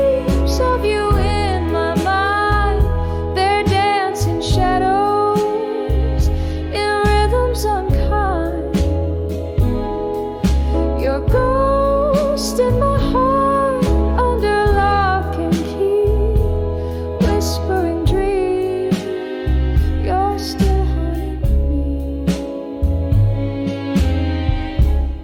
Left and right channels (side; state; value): both; identical; correlation 1.00